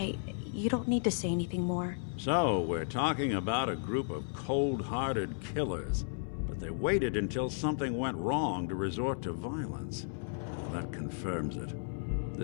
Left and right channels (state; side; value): silent; right; 55 dB below the other